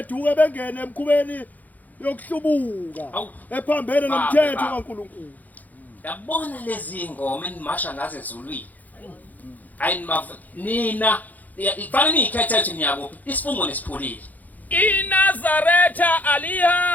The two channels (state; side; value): late; right; 0.081 ms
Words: bengene emkhubeni yokuhlubuka ephambene nomthetho kaNkulunkulu. Yabona lezi ingoma enimasha ngaze ezulwini. Nina ifanele nikhethe ukuthi niyakuphi isifungo nesiphulile. iNazaretha